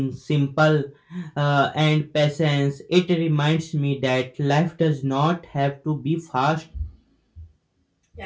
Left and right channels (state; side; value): identical; both; correlation 1.00